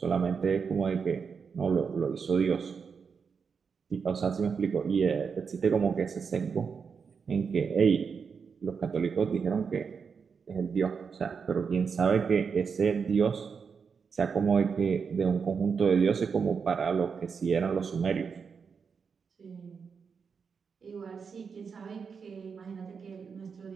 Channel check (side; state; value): left; quieter; 5.9 dB